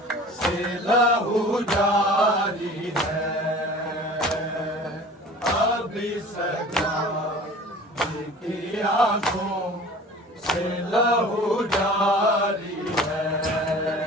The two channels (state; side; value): normal; both; correlation 0.43